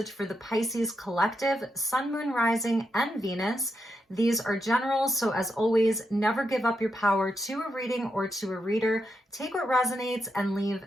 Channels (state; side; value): normal; both; correlation 0.83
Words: for the Pisces collective, Sun, Moon, Rising, and Venus. These are generals, so as always, never give up your power to a reading or to a reader. Take what resonates and leave